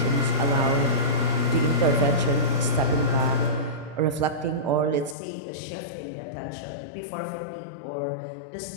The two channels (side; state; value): right; drops out; at 5.2 s